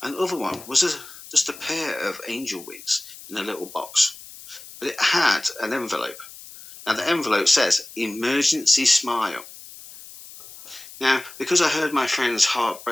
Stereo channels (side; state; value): left; noise; hiss, 17 dB below the sound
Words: And the other one was just a pair of angel wings in a little box. But it had an envelope. Now, the envelope says, emergency smile. Now, because I heard my friend's heart